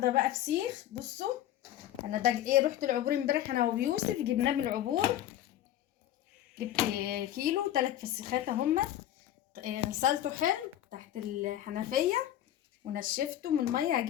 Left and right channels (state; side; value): quieter; right; 12.4 dB